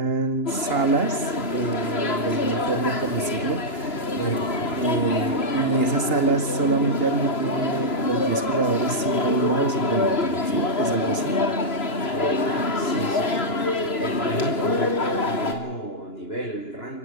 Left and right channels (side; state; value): right; late; 3.0 ms